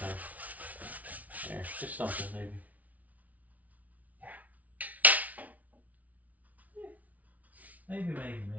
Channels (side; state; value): left; late; 0.072 ms